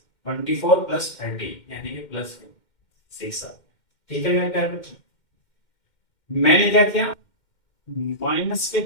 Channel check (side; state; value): right; late; 2.1 ms